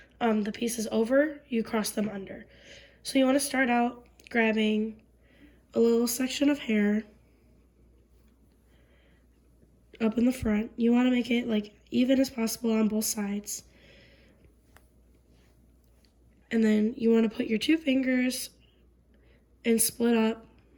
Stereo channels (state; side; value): identical; both; correlation 1.00